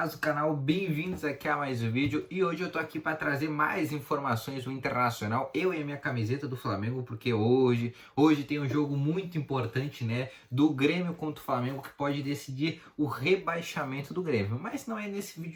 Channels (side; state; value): both; identical; correlation 1.00